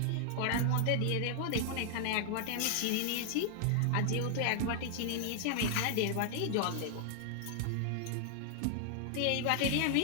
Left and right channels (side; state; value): both; different; correlation 0.00